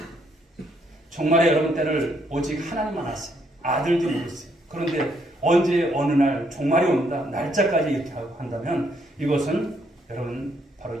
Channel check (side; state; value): both; normal; correlation 0.72